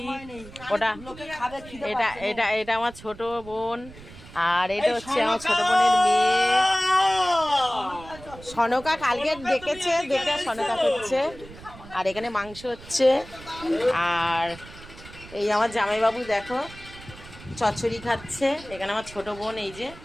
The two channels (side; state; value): right; noise; rumble, 18 dB below the sound